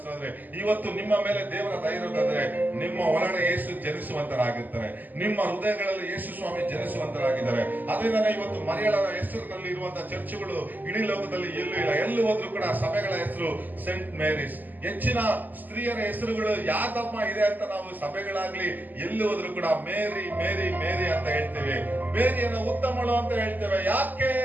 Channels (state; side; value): late; left; 0.085 ms